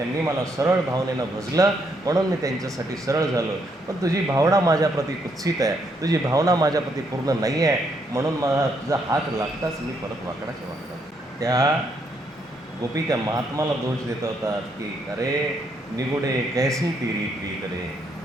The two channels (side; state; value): both; normal; correlation 0.74